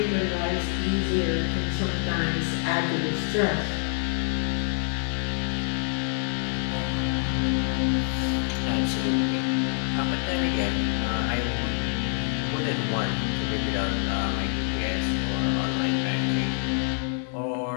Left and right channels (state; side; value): silent; right; 56 dB below the other